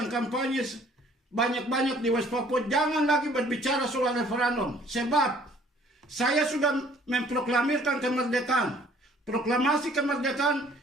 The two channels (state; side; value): normal; both; correlation 0.57